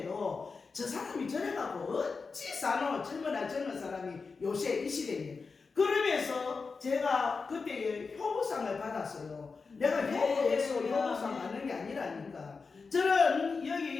저 사람이 저래가고 어찌 사노 젊은 사람이 요새 이 시대에. 그러면서 제가 그때 효부상을 받았어요. 내가 효부에서 효부상 받는 게 아니라니까. 저는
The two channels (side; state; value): right; quieter; 4.7 dB